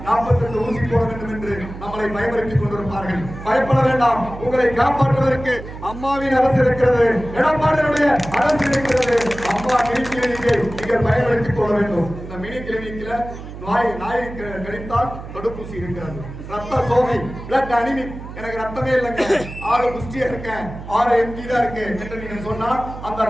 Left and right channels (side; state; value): right; noise; hum, 12 dB below the sound